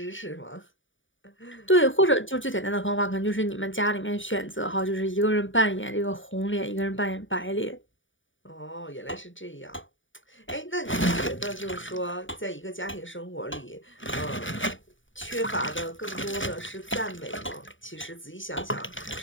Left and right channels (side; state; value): right; late; 0.56 ms